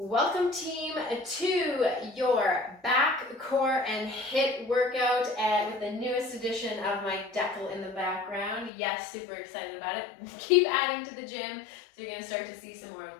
Welcome team to your back, core, and HIIT workout with the newest edition of my decal in the background. Yes, super excited about it. Keep adding to the gym, so you're going to start to see some more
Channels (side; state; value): right; drops out; at 8.7 s